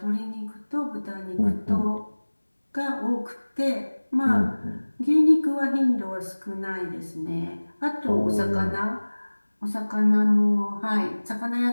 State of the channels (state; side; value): inverted; both; correlation -1.00